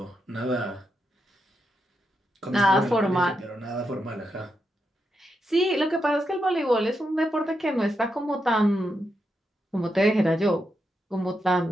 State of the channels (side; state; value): both; normal; correlation 0.84